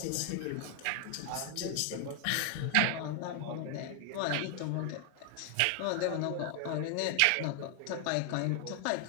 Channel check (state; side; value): different; both; correlation 0.00